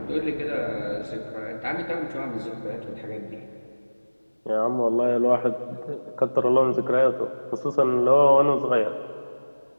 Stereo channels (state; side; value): inverted; both; correlation -1.00